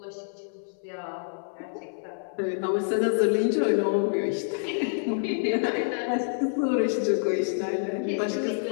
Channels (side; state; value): right; silent; 59 dB below the other